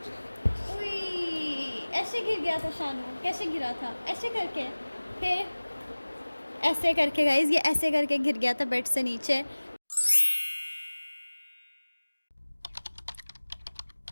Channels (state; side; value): inverted; both; correlation -1.00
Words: ऐसे गिर गया था शानू। कैसे गिरा था? ऐसे करके, फिर ऐसे करके गाइस, ये ऐसे करके गिर गया था बेड से नीचे।